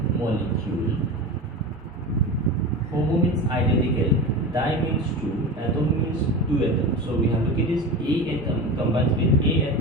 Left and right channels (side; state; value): both; normal; correlation 0.27